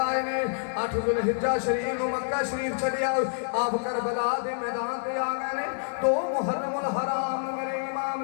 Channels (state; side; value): silent; right; digital silence